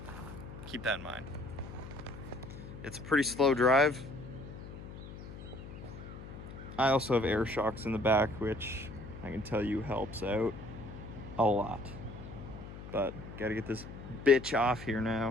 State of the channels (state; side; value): noise; left; hum, 12 dB below the sound